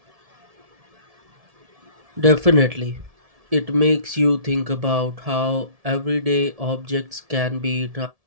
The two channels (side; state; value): left; late; 1.7 ms